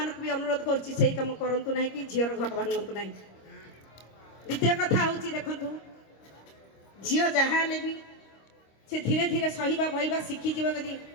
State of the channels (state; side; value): late; right; 26 ms